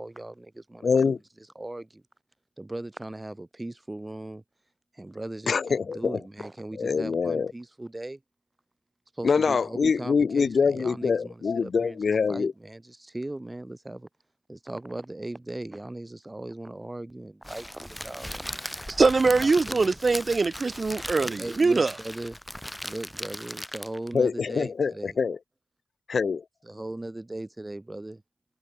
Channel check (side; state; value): both; normal; correlation 0.90